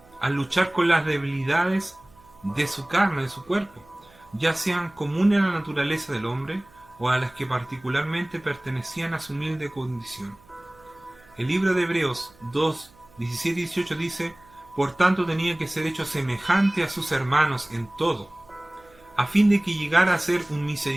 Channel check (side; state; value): right; noise; hum, 28 dB below the sound